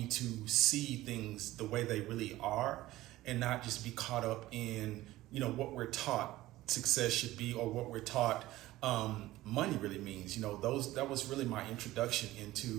to see things the way they really are and not just be caught up in, what we're taught success should be or what we're taught money really means. That was really my introduction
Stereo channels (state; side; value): quieter; left; 16.6 dB